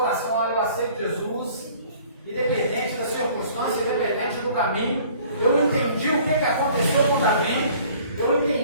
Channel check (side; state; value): both; inverted; correlation -0.53